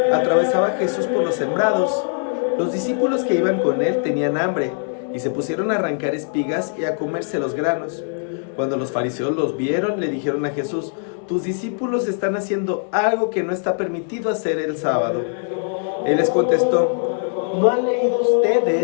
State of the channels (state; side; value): silent; right; 65 dB below the other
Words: atravesaba Jesús por los sembrados. Los discípulos que iban con él tenían hambre y se pusieron a arrancar espigas y a comerse los granos. Cuando los fariseos los vieron, le dijeron a Jesús: tus discípulos están haciendo algo que no está permitido hacer el sábado. Él les contestó: ¿no han leído